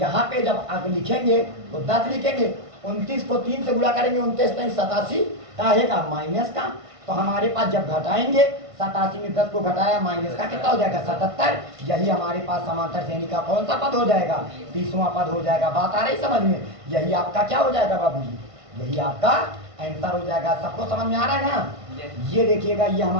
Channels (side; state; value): left; late; 1.5 ms